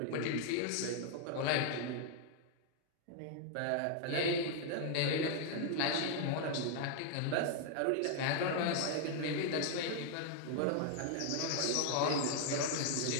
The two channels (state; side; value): different; both; correlation 0.00